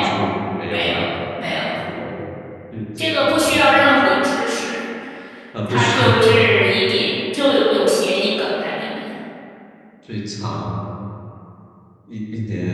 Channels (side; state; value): both; identical; correlation 1.00